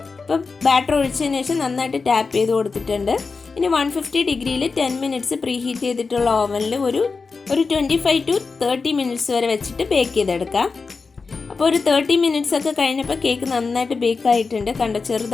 ഇപ്പോൾ ബാറ്റർ ഒഴിച്ചതിന് ശേഷം നന്നായിട്ട് ടാപ്പ് ചെയ്ത് കൊടുത്തിട്ടുണ്ട്. ഇനി 150 ഡിഗ്രിയിൽ 10 മിനിറ്റ്സ് പ്രീ ഹീറ്റ് ചെയ്തിട്ടുള്ള ഓവനിൽ ഒരു 25 to 30 മിനിറ്റ്സ് വരെ വെച്ചിട്ട് ബേക്ക് ചെയ്തെടുക്കാം. അപ്പോൾ ഒരു 30 മിനിറ്റ്സ് ഒക്കെ കഴിഞ്ഞപ്പോൾ കേക്ക് നന്നായിട്ട് ബേക്ക് ആയിട്ടുണ്ട്. കണ്ടോ,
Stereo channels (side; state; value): right; quieter; 4.5 dB